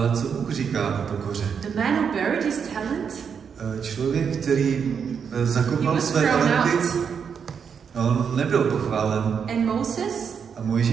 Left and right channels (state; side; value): quieter; left; 6.8 dB